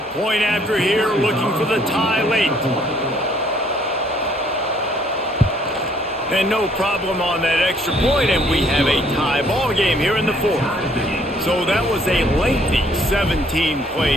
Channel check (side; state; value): both; normal; correlation 0.64